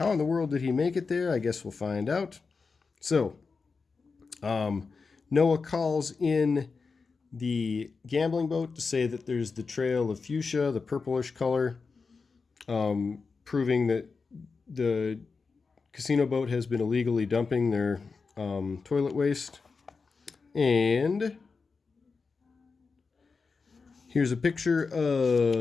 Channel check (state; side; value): quieter; right; 4.7 dB